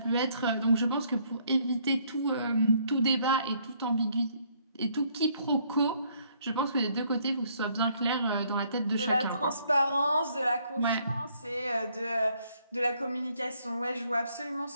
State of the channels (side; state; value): both; inverted; correlation -0.67